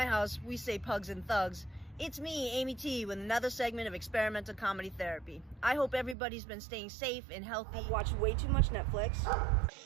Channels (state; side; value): drops out; left; at 6.2 s